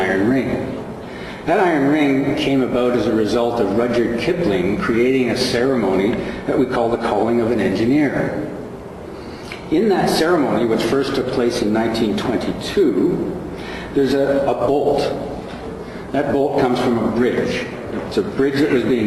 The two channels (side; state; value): both; identical; correlation 1.00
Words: ring. That iron ring came about as a result of Rudyard Kipling creating a ceremony that we call the calling of an engineer. In that ceremony, which first took place in 1922, there's a bolt. That bolt comes from a bridge. It's a bridge that was